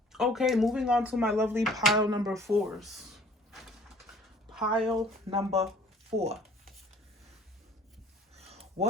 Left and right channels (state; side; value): normal; both; correlation 0.54